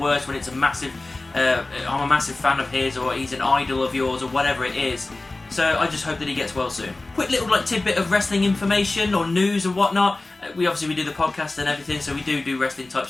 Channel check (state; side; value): quieter; right; 3.0 dB